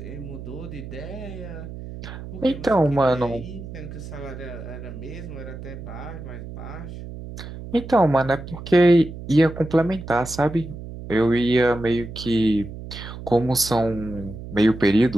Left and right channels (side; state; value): right; noise; hum, 11 dB below the sound